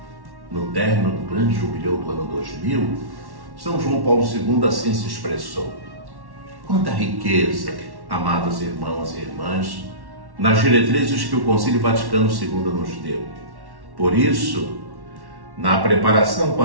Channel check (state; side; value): late; left; 1.1 ms